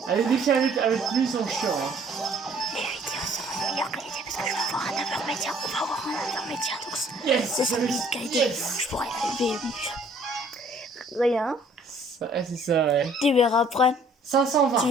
Allez, défi avec lui, ils sont chiants. Hein. Les vidéos seront meilleures que les idées parce que je vais avoir un 9h média. On va avoir un 9h média, donc yes, c'est ça de qualité. Yes. Je pourrais élever. Rien. C'est ça, ouais. Tu verras après. 520. Tu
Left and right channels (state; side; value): normal; both; correlation 0.59